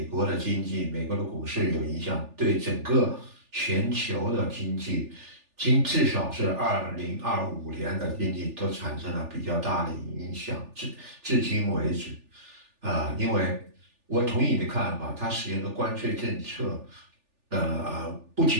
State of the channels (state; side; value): late; left; 3.4 ms